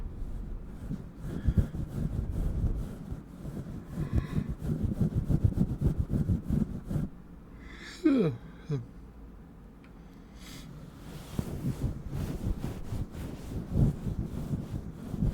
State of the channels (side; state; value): both; identical; correlation 1.00